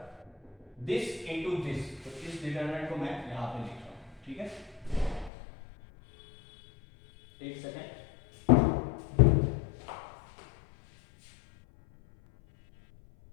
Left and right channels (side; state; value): right; drops out; at 5.3 s